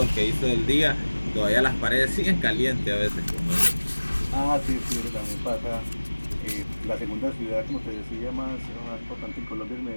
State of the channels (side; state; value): both; inverted; correlation -1.00